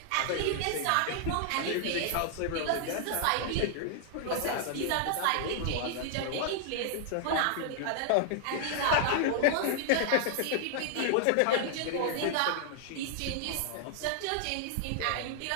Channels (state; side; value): different; both; correlation -0.01